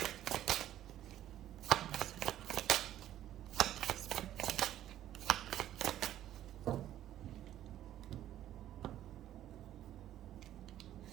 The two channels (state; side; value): quieter; left; 12.3 dB